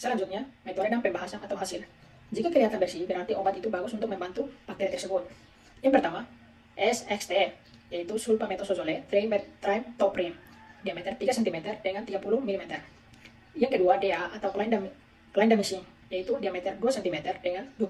metode dan pembahasan atau hasil. Jika kelihatan bersih, berarti obat itu bagus untuk membantu bakteri tersebut. Yang pertama, SXT, yaitu sulfametosazole trimethoprim, diameter 3 cm dengan 30 mm. Yang kedua, DA atau clindamycin, yaitu diameter 2 cm dengan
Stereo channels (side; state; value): both; identical; correlation 1.00